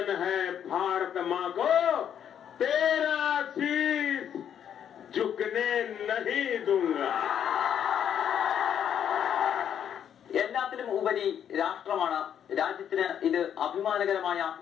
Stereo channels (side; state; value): right; quieter; 9.1 dB